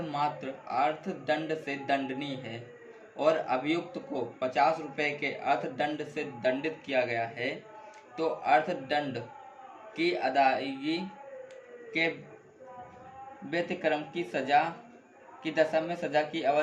मात्र अर्थदंड से दंडनीय है और अभियुक्त को 50 रुपये के अर्थदंड से दंडित किया गया है, तो अर्थदंड की अदायगी के व्यतिक्रम की सजा की दशा में सजा की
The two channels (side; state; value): both; identical; correlation 1.00